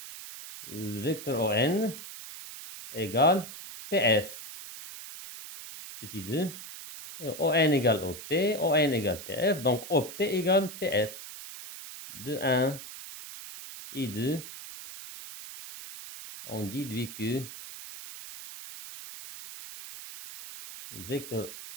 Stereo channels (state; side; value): noise; right; hiss, 12 dB below the sound